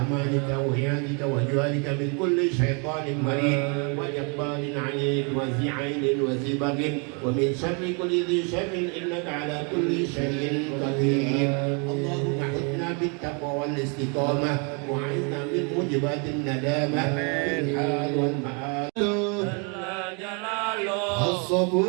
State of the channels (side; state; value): left; quieter; 35.4 dB